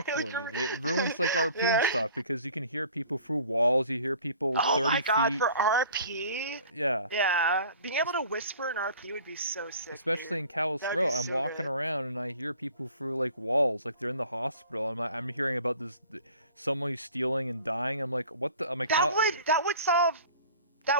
Exactly. It ruins like RP and yeah. stuff because you can hear people through walls. You hear people Oh 30 my god, feet. for RP, Yeah. yeah, being able to whisper in RP would be so sick, dude. Especially in Callous That would Row, be I'm so walking good. around and I hear people through like walls, like they're in the hospital. I'm hearing about this someone who's stealing and dying. I'm like, what the? I'm like, That how? would that would solve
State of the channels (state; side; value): inverted; both; correlation -0.48